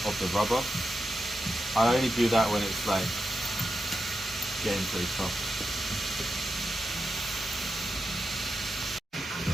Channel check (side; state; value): both; normal; correlation 0.88